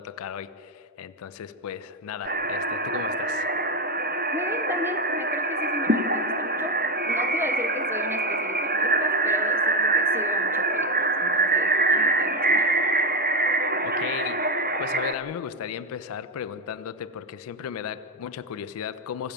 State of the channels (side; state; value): both; normal; correlation 0.10